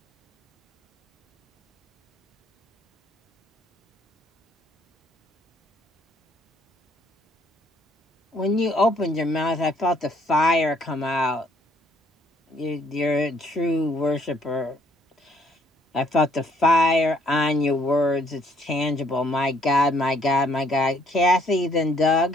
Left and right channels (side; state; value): both; normal; correlation 0.65